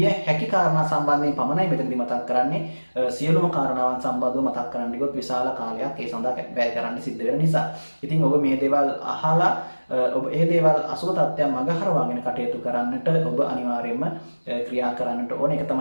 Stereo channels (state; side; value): inverted; both; correlation -1.00